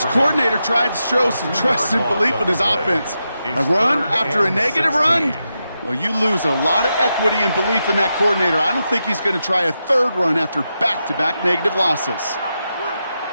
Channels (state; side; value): inverted; both; correlation -0.87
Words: coordinator tried to show some trust and belief in his offense. A run after a negative run? Well, you lose a lot of equity and belief in that coordinator. I don't think he's going to try a 3rd run after back-to-back negative losses.